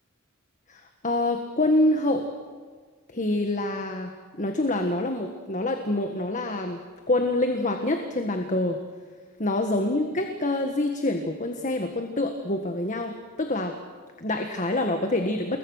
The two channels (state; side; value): normal; both; correlation 0.36